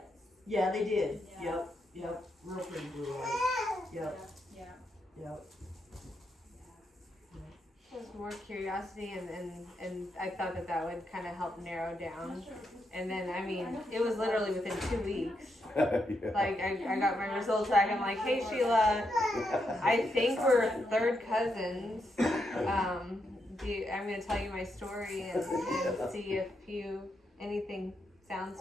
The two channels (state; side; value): normal; both; correlation 0.81